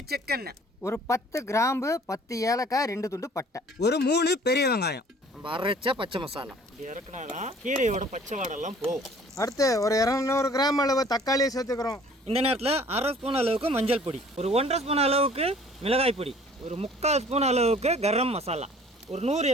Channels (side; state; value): both; normal; correlation 0.53